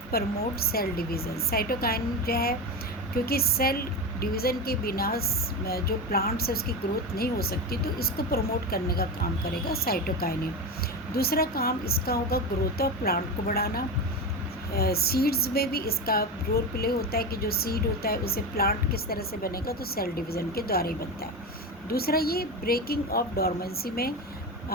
promote cell division. Cytokinin जो है, क्योंकि सेल डिवीज़न के बिना जो प्लांट्स है उसकी ग्रोथ नहीं हो सकती, तो इसको प्रमोट करने का काम करेगा साइटोकाइनिन। दूसरा काम इसका होगा ग्रोथ ऑफ प्लांट को बढ़ाना। सीड्स में भी इसका रोल प्ले होता है कि जो सीड होता है उसे प्लांट किस तरह से बनेगा, तो सेल डिवीज़न के द्वारा ही बनता है। दूसरा ये ब्रेकिंग ऑफ डॉर्मेंसी में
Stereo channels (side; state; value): both; normal; correlation 0.20